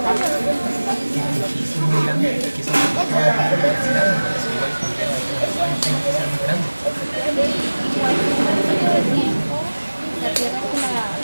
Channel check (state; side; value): inverted; both; correlation -1.00